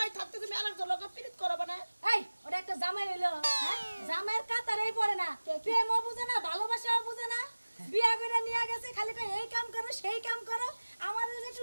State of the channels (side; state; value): both; inverted; correlation -1.00